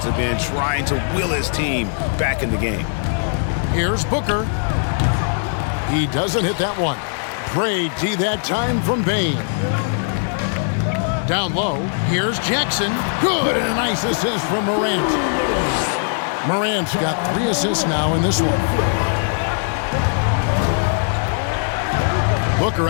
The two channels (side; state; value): right; silent; digital silence